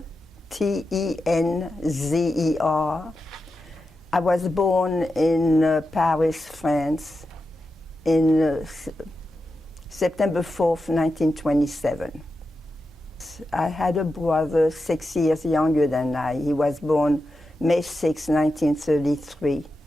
Tenzer. I was born in Paris, France, in September 4th, 1927. I had a brother 6 years younger than I. He was born May 6, 1933.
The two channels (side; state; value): both; normal; correlation 0.89